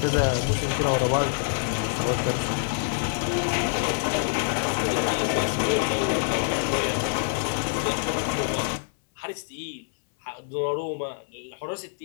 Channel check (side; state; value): right; silent; 61 dB below the other